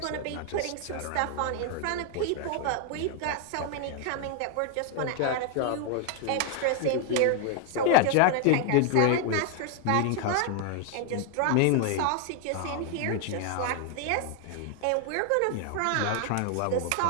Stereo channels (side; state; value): both; different; correlation 0.00